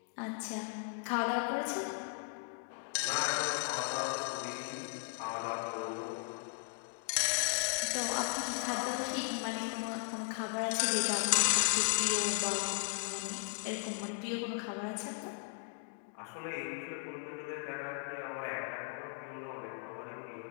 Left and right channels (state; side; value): silent; right; 53 dB below the other